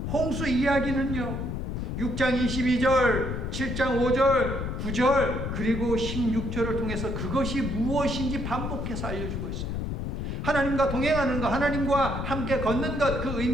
홍수 이야기는요, 6장 22절, 7장 5절, 9절, 그리고 16절을 통해서 그것이 무엇인지 반복해서 알려주고 있어요. 하나님과 동행하는 것, 하나님과 함께 걷는 것, 그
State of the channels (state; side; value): noise; left; rumble, 3 dB below the sound